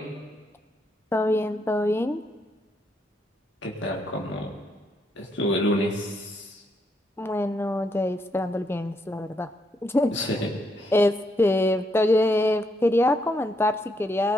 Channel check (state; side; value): normal; both; correlation 0.76